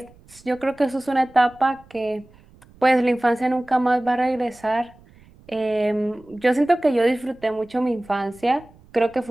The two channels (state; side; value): noise; right; rumble, 27 dB below the sound